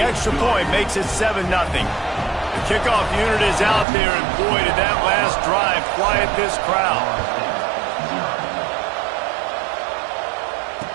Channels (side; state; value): left; drops out; at 3.9 s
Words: extra point makes it 7-0. The kickoff unit is out there, and boy, did that last drive quiet this crowd.